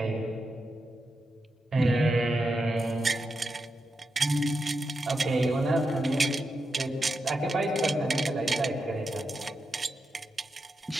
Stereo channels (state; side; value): normal; both; correlation 0.87